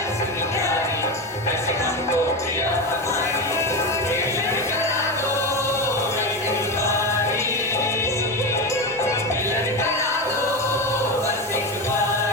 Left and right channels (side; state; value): both; normal; correlation 0.18